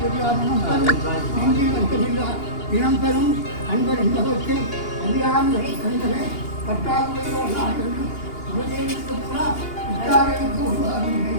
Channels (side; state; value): right; late; 2.8 ms